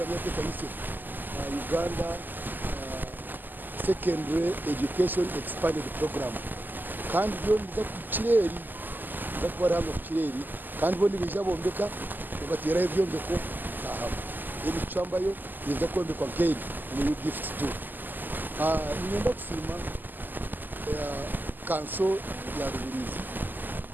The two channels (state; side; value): late; left; 0.088 ms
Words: ya Komisiyo Uganda Secondary Education Expanded Program kandi byo ndiza ku kireri ndakora hano ku kireri kandi bo nibija bombeka ugatera ibyo mbeko aha iri Kichwamba yo niza kombekwa keri ni gift to nienda kusima kanso ya Rubirizi